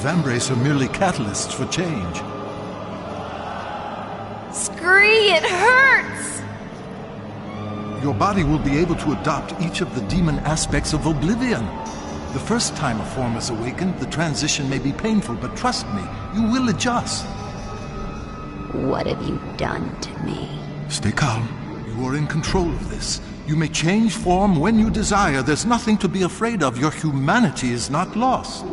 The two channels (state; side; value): identical; both; correlation 1.00